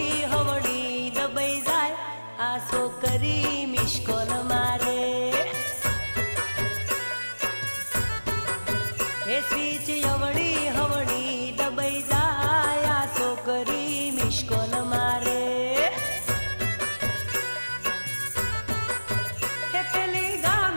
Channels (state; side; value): inverted; both; correlation -1.00